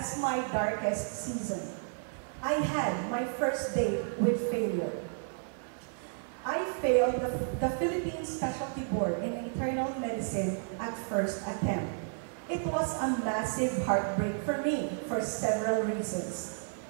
my darkest season. I had my first date with failure. I failed the Philippine Specialty Board in Internal Medicine at first attempt. It was a massive heartbreak for me for several reasons.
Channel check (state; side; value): silent; left; 56 dB below the other